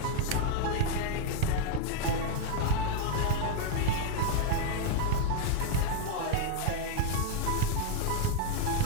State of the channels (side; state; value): both; different; correlation 0.00